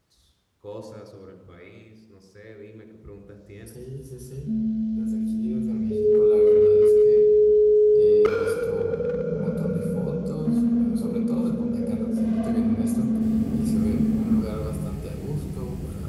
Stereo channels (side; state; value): both; identical; correlation 1.00